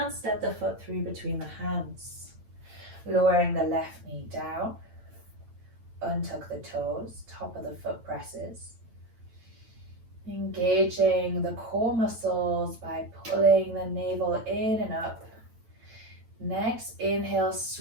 step the foot through between the hands. Lowering the left knee down, untuck the toes, top of the foot presses. Engaging the core muscles by pulling the navel in and up. Next, inhale,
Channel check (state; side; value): late; left; 8.9 ms